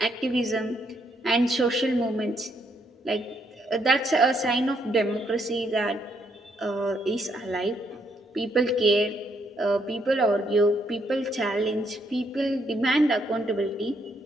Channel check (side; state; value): both; normal; correlation 0.73